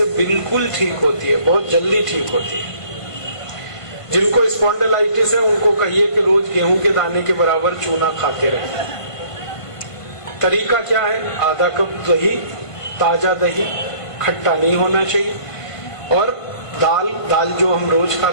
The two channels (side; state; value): right; late; 1.5 ms